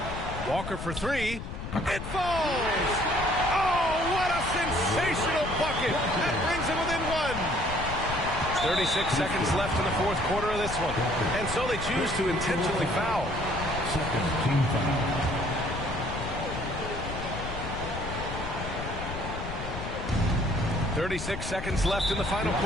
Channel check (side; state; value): left; noise; rumble, 7 dB below the sound